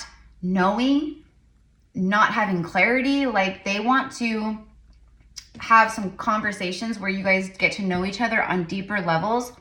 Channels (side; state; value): both; identical; correlation 1.00